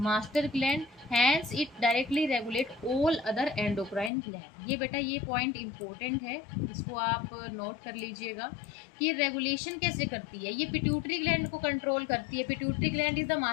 gland, hence it directly regulate all other endocrine gland. ये बेटा ये पॉइंट इंपॉर्टेंट है, इसको आप नोट कर लीजिएगा कि ये रेगुलेशन कैसे करती है। ये पिट्यूटरी ग्लैंड को कंट्रोल करती है। Pituitary gland is the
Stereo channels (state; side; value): drops out; right; at 4.1 s